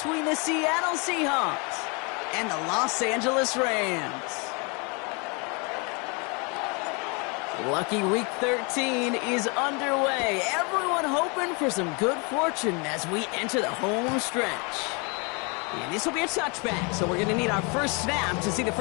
the Seattle Seahawks and the Los Angeles Rams. Lucky Week 13 is underway. Everyone hoping for some good fortune as we enter the home stretch. And this will be a touchback, so we're going to need our first snap to see the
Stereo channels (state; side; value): quieter; right; 31.8 dB